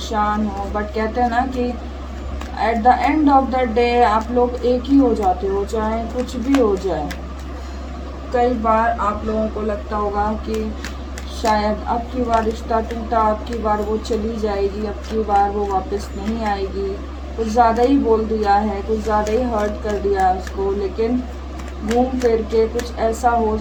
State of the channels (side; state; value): both; identical; correlation 1.00